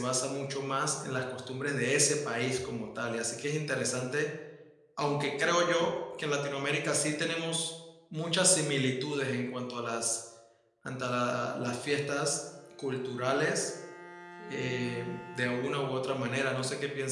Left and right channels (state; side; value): identical; both; correlation 1.00